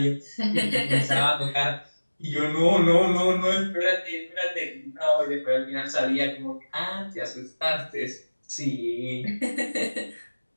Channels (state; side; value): inverted; both; correlation -1.00